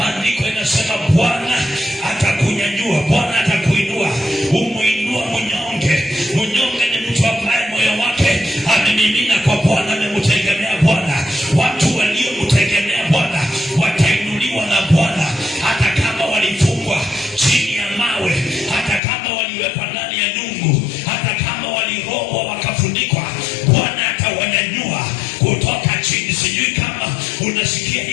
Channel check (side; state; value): right; drops out; at 19.0 s